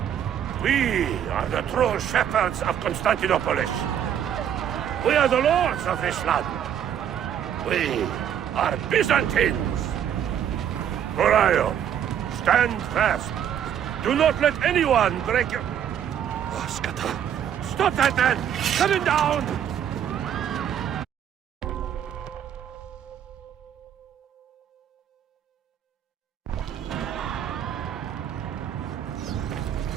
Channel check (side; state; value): left; quieter; 9.4 dB